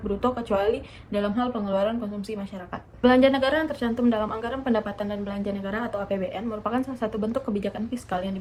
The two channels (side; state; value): both; identical; correlation 1.00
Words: bruto kecuali dalam hal pengeluaran konsumsi masyarakat. Belanja negara yang tercantum dalam Anggaran Pendapatan dan Belanja Negara atau APBN merupakan salah satu bentuk kebijakan fiskal yang